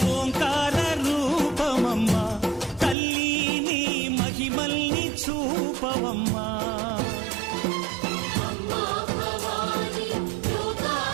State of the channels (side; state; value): left; drops out; at 3.0 s